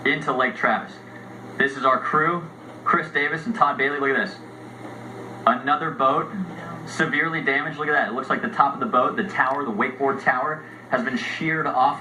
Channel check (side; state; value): both; identical; correlation 1.00